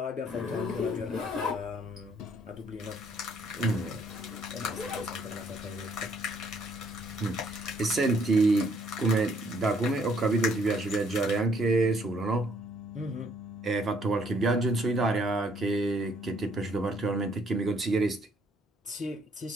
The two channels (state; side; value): normal; both; correlation 0.66